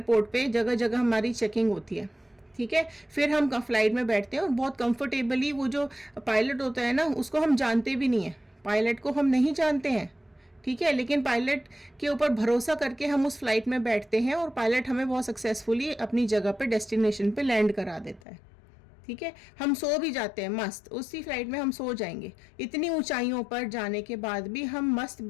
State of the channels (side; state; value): right; drops out; at 18.2 s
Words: पे जगह जगह हमारी चेकिंग होती है, ठीक है। फिर हम फ्लाइट में बैठते हैं और बहुत कंफर्टेबली, वो जो पायलट होता है ना, उसको हम जानते भी नहीं है, पायलट को हम नहीं जानते हैं, ठीक है। लेकिन पायलट के ऊपर भरोसा करके हम उस फ्लाइट में बैठते हैं और पायलट हमें बहुत सक्सेसफुली अपनी जगह पे, डेस्टिनेशन पे लैंड करा देता है, ठीक है। हम सो भी जाते हैं मस्त, उसी फ्लाइट में हम सो जाएंगे। इतनी ऊंचाइयों पर जाने के बाद भी हम मस्त